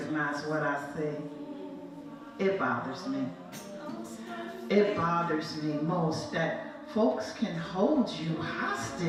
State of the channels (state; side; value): identical; both; correlation 1.00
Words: what I see. It bothers me. It bothers me most that folks can hold you